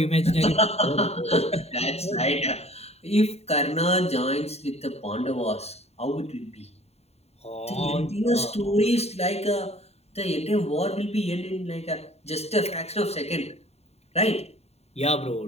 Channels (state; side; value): late; right; 0.30 ms